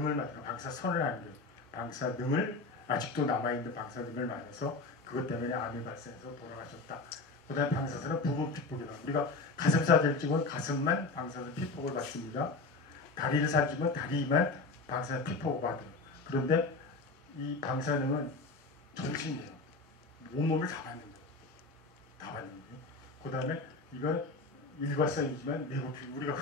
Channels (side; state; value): right; quieter; 3.6 dB